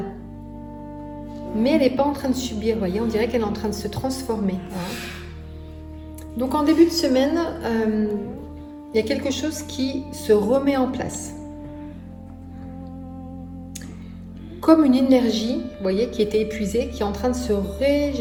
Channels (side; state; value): both; identical; correlation 1.00